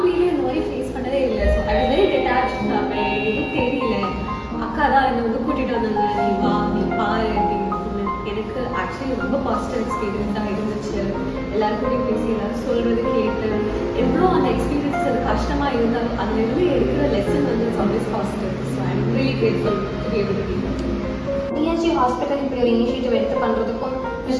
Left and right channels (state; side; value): identical; both; correlation 1.00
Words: இந்த மாதிரி ஃபேஸ் பண்ணதே இல்லை. So I very detached. எதுவும் தெரியல. அக்கா தான் என்னை வந்து கூட்டிட்டு வந்தாங்க, நீ வா நீ பாரு அப்படின்னு. எனக்கு ஆக்சுவலி ரொம்ப பாசிட்டிவ் எக்ஸ்பீரியன்ஸாக இருந்துச்சு. எல்லாருக்கூடையும் பேசி எல்லாரும் சொல்றது கேட்டு எவ்வளோ அந்த எக்ஸ்பீரியன்ஸ் அது கஷ்டமா இருந்தாலும் அதுல இருந்து எடுக்கிற லெசன் வந்து it's always positive. So I am really grateful to be able to be TNG hospital இப்படி ஒரு இனிஷியேட்டிவ் எடுத்து பண்ணுறதுக்கும்,